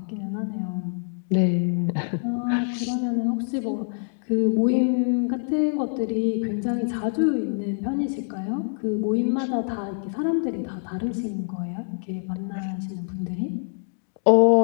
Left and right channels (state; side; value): silent; right; digital silence